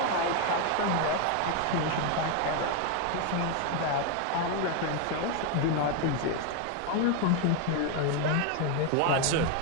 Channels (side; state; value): both; different; correlation 0.01